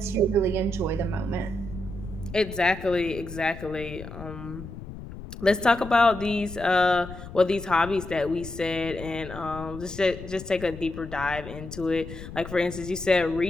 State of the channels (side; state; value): left; noise; rumble, 12 dB below the sound